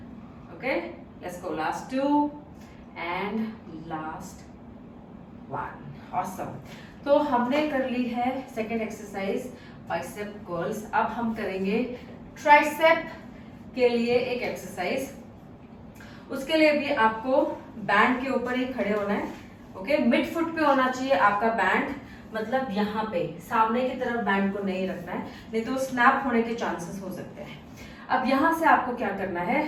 Okay, let's go, last 2 and last 1। Awesome. तो हमने कर ली है सेकेंड एक्सरसाइज बाइसेप कर्ल्स। अब हम करेंगे ट्राइसेप के लिए एक एक्सरसाइज। उसके लिए भी आपको बैंड के ऊपर ही खड़े होना है। ओके, मिड फुट पे होना चाहिए आपका बैंड, मतलब यहाँ पे सामने की तरफ बैंड को नहीं रखना है, नहीं तो स्नैप होने के चांसेस हो सकते हैं। अब यहाँ से आपको क्या करना है,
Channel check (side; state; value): both; identical; correlation 1.00